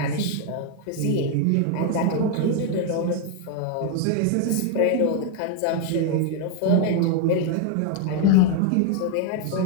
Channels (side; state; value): both; different; correlation 0.01